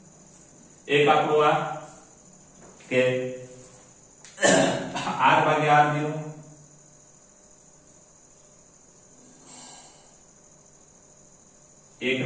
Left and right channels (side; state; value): both; identical; correlation 1.00